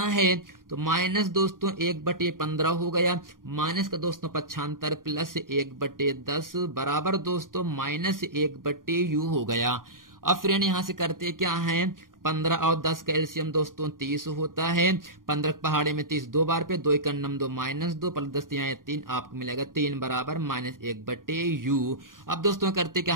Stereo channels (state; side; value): late; left; 0.90 ms